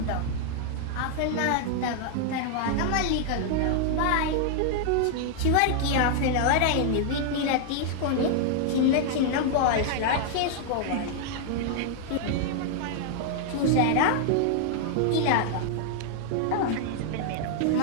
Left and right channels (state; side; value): different; both; correlation 0.00